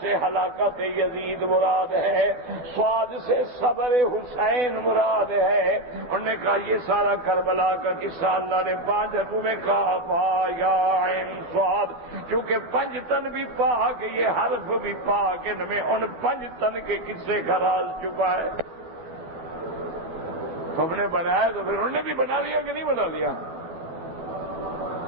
ہلاکت یزید مراد ہے، صاد سے صبر حسین مراد ہے۔ انہوں نے کہا یہ سارا کربلا کا قصہ اللہ نے 5 حرفوں میں کہا ہا یا عین صاد، کیونکہ 5 تن بھی پاک، یہ حرف بھی پاک، ان میں ان 5 تن کے قصے کا راز چھپا ہے۔ تم نے بنایا تو پھر انہوں نے بھی بنا لیا کہ نہیں بنا لیا؟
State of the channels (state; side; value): late; left; 12 ms